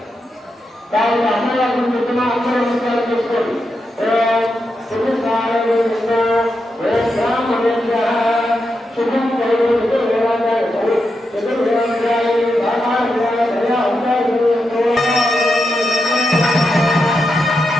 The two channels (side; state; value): both; normal; correlation 0.86